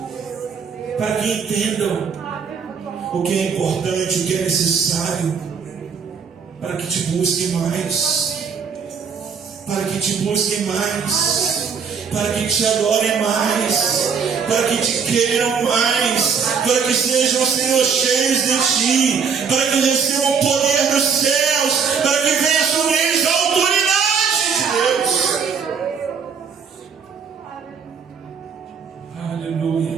para que entendam o que é importante, o que é necessário, para que te busquem mais, para que te busquem mais, para que te adorem mais, para que te queiram mais, para que sejam, Senhor, cheios de Ti, para que recebam o poder do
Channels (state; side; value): quieter; left; 6.2 dB